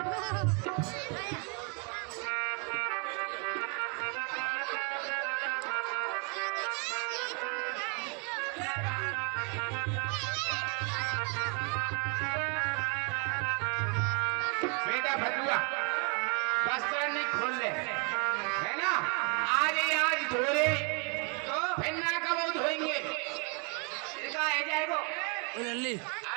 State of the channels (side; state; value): left; quieter; 34.9 dB